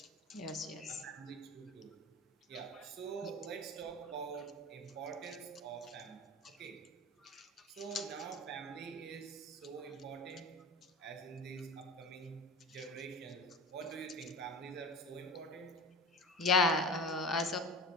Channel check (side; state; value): both; normal; correlation 0.33